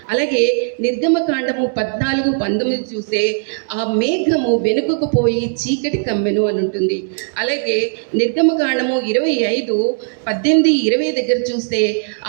అలాగే నిర్గమకాండము 14:19 చూస్తే, ఆ మేఘము వెనుకకు పోయి చీకటి కమ్మెను అని ఉంటుంది. అలాగే నిర్గమకాండము 25:18-20 దగ్గర చూస్తే,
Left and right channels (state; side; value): silent; left; 67 dB below the other